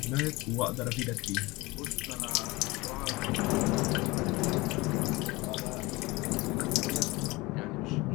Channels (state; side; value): quieter; right; 22.5 dB